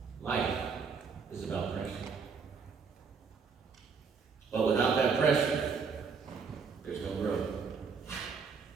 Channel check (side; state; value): left; quieter; 5.5 dB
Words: Life is about pressure. But without that pressure, there's no growth.